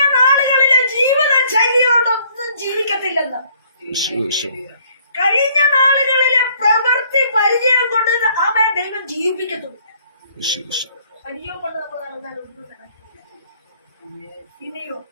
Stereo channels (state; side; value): inverted; both; correlation -0.62